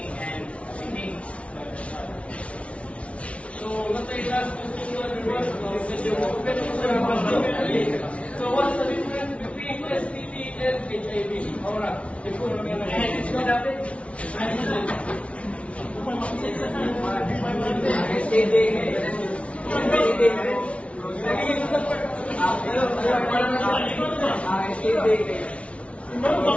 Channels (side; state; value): right; late; 0.062 ms